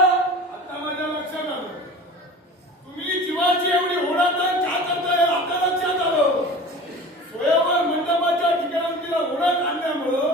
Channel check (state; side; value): normal; both; correlation 0.38